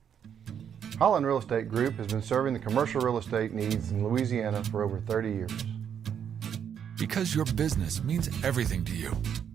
Holland Real Estate Group has been serving the commercial real estate needs in Louisiana for over 30 years. Because your business means everything to you,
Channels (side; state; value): left; quieter; 8.3 dB